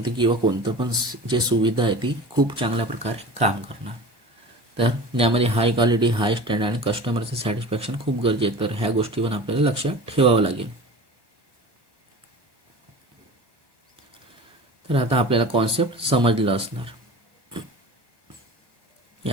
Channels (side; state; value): left; late; 1.2 ms